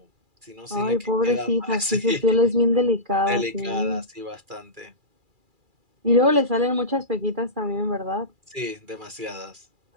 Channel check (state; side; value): late; left; 2.4 ms